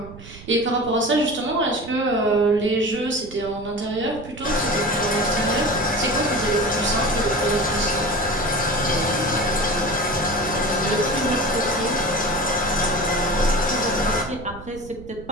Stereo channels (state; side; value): noise; right; rumble, 17 dB below the sound